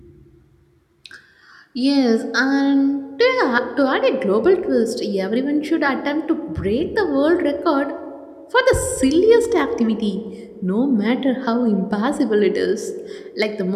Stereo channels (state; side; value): identical; both; correlation 1.00